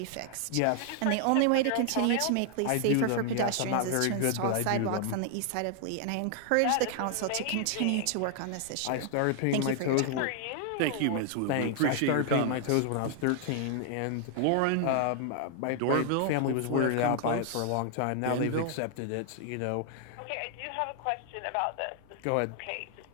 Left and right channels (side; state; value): both; different; correlation 0.00